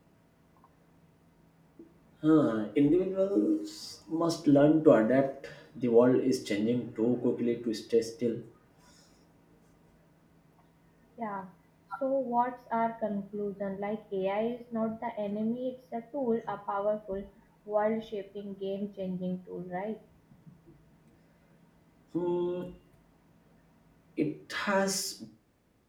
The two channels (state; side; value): identical; both; correlation 1.00